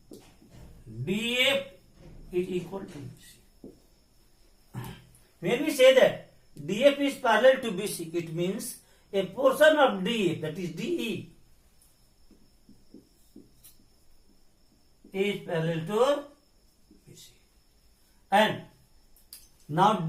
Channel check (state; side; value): identical; both; correlation 1.00